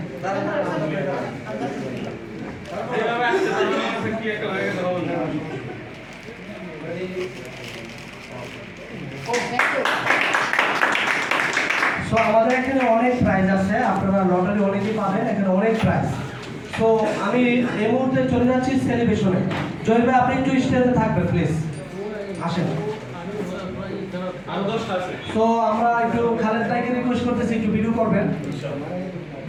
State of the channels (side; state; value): both; identical; correlation 1.00